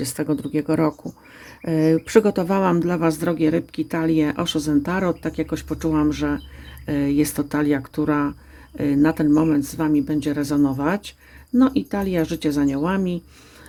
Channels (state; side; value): identical; both; correlation 1.00